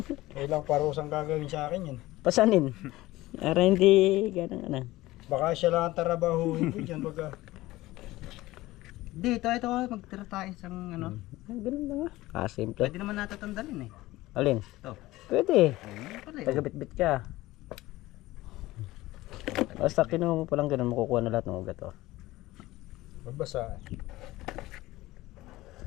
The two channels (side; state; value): right; quieter; 17.9 dB